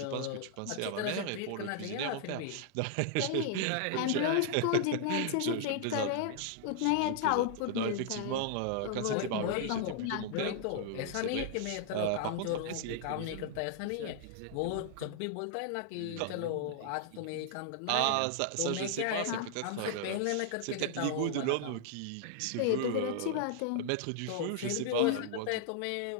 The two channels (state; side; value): different; both; correlation -0.01